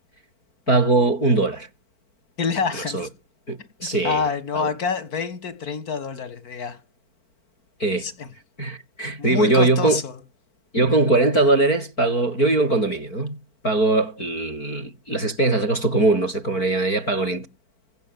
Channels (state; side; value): late; right; 4.5 ms